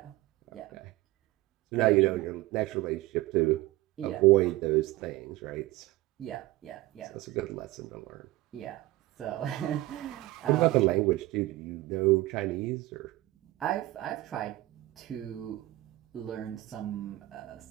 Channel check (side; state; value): left; quieter; 17.9 dB